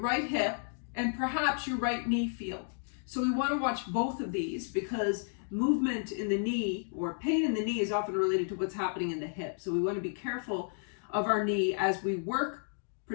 hip and perhaps your right knee feel. So we want to watch both of these because movement in the knee or pain in the knee is often related to what's happening in the hip. So we want to be careful of our knee as we work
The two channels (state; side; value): silent; right; digital silence